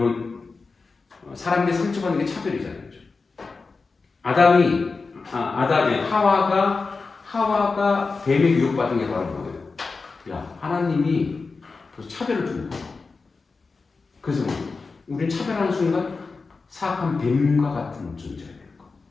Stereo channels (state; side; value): quieter; right; 4.3 dB